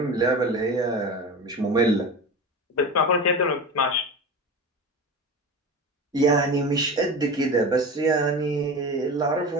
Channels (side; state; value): both; normal; correlation 0.29